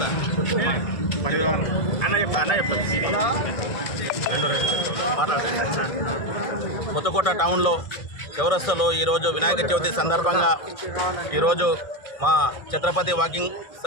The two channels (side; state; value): right; late; 1.5 ms